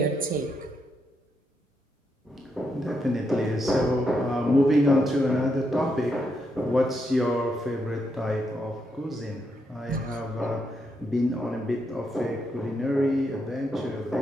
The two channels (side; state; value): both; normal; correlation 0.80